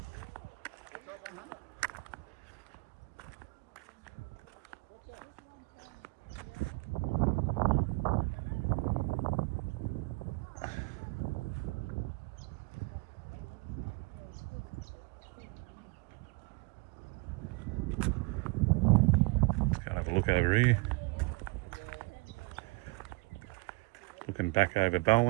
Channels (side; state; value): left; quieter; 26.7 dB